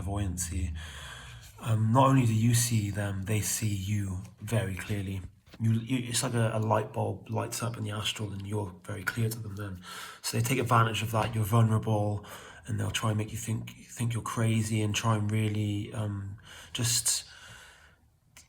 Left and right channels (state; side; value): identical; both; correlation 1.00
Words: Not only do you see them, they see you very clearly. It's like a light bulb lights up in the astral and you're very clear to them then. So they take advantage of that. You're vulnerable and they'll try and make you think you're crazy and try and really just